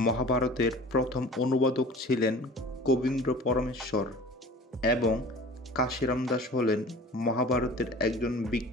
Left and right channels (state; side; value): normal; both; correlation 0.42